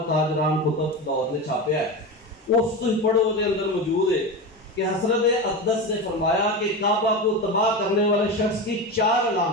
ताजरान कुतुब दौर ने छापिया है, उस तुम पढ़ो के अंदर मौजूद है कि हज़रत अक़दस ने फरमाया कि काबा को तबाह करने वाले शख्स की 4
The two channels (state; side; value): normal; both; correlation 0.22